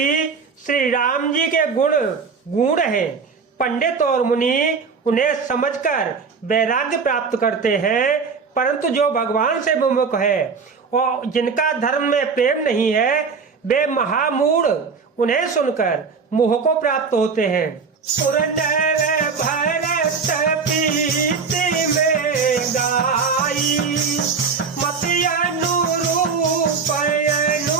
श्री राम जी के गुण गूढ़ हैं। पंडित और मुनि उन्हें समझकर वैराग्य प्राप्त करते हैं, परंतु जो भगवान से विमुख है और जिनका धर्म में प्रेम नहीं है, वे महामूढ़ उन्हें सुनकर मोह को प्राप्त होते हैं। पुरंदर भरत प्रीति में गाई मति अनुरूप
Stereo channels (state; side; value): quieter; left; 5.3 dB